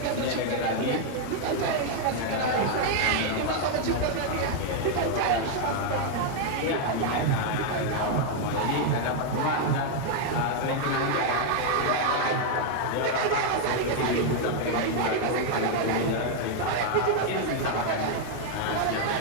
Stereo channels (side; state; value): both; different; correlation 0.00